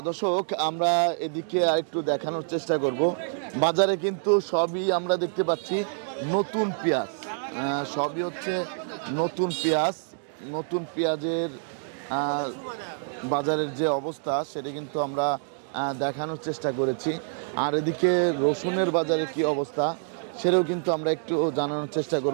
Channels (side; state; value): left; silent; digital silence